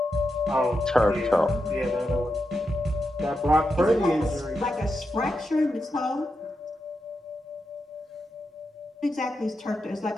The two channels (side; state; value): both; normal; correlation 0.87